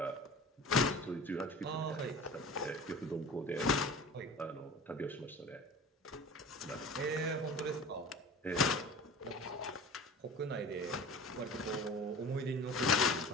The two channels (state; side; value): normal; both; correlation 0.38